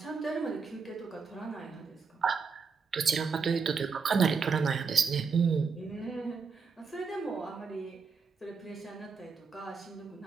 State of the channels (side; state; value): left; quieter; 5.3 dB